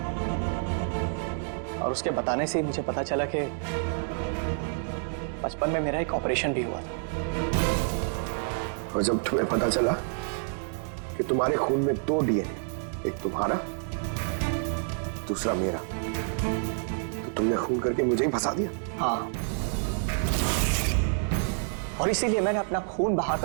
और उसके बताने से ही मुझे पता चला कि बचपन में मेरा एक ऑपरेशन भी हुआ था। और जब तुम्हें पता चला कि तुम्हारे खून में 2 डीएनए, एक तुम्हारा दूसरा मेरा, तो तुमने खून करके मुझे ही फंसा दिया। हाँ, और इसीलिए मैंने अपना खून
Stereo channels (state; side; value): silent; left; 59 dB below the other